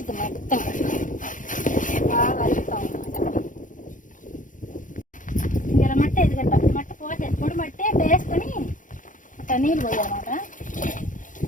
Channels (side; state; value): right; late; 0.38 ms